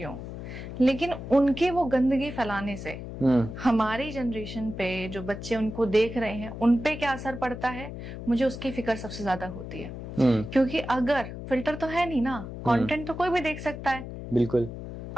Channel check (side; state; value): left; noise; hum, 9 dB below the sound